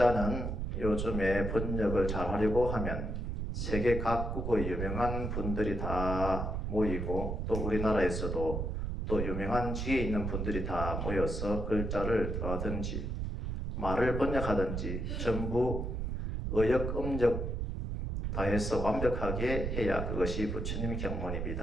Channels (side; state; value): right; noise; rumble, 2 dB below the sound